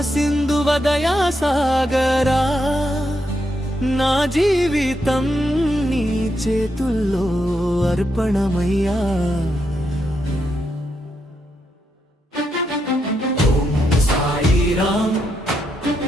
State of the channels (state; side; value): normal; both; correlation 0.81